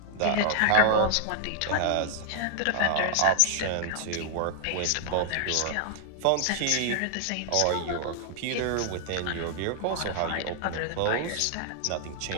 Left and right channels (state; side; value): different; both; correlation 0.00